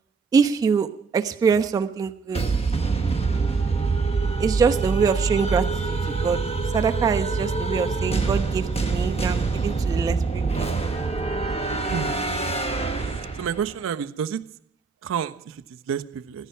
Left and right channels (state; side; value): quieter; left; 4.7 dB